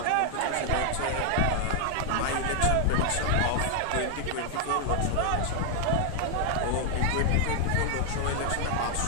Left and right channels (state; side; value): different; both; correlation 0.00